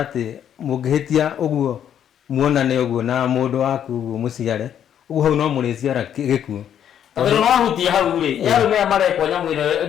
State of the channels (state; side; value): quieter; right; 9.6 dB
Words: atĩ mũngĩhĩtia ũguo muonane ũguo na mũndũ waku ũguo mũciare ũguo hau no mũrĩciara gĩkuũ tondũ no ahutia hau rĩ yarũ maya marekwo nyamũ ĩno